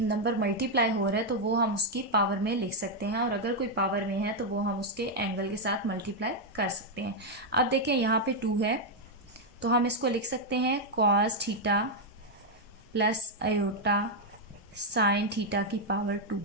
मल्टीप्लाई हो रहा है तो वो हम उसकी पावर में लिख सकते हैं, और अगर कोई पावर में है तो वो हम उसके एंगल के साथ मल्टीप्लाई कर सकते हैं। अब देखें यहाँ पे 2 है तो हम इसको लिख सकते हैं cos theta plus iota sine theta की पावर 2,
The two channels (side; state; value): both; normal; correlation 0.00